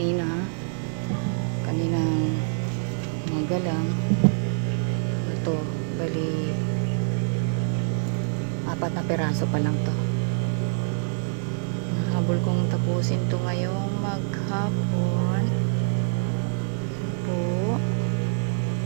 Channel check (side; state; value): left; silent; digital silence